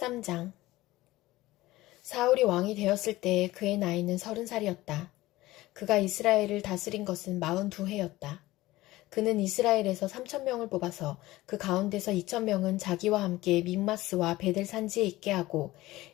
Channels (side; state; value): right; quieter; 17.9 dB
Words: 사울이 왕이 되었을 때 그의 나이는 30살이었다. 그가 이스라엘을 다스린 것은 42해였다. 그는 이스라엘에서 3,000명을 뽑아서 그 가운데서 2,000명은 자기와 함께 믹마스와 베델 산지에 있게 하고